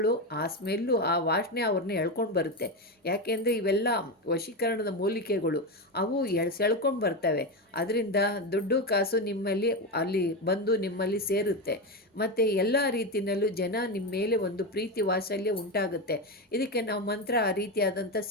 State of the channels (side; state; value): both; normal; correlation 0.14